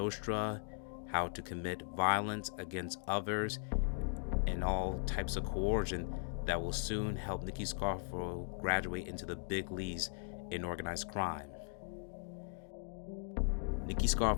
how to commit violence against others, and all types of coercion that will soon help Nicky Scarfo graduate into the big leagues in organized crime. Nicky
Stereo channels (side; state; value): right; silent; digital silence